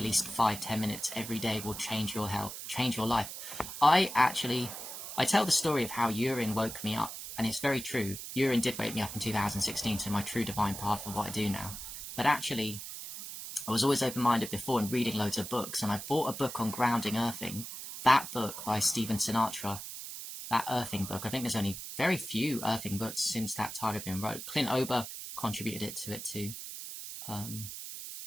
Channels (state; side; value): noise; right; hiss, 9 dB below the sound